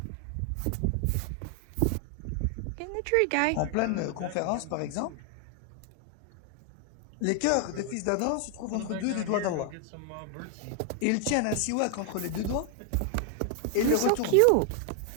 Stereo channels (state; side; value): different; both; correlation 0.00